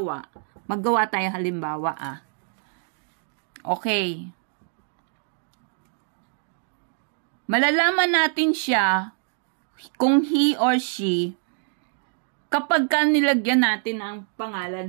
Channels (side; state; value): left; silent; 62 dB below the other